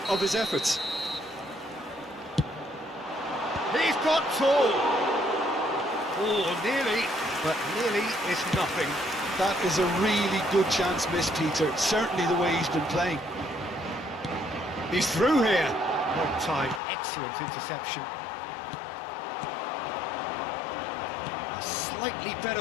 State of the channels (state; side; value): drops out; right; at 16.8 s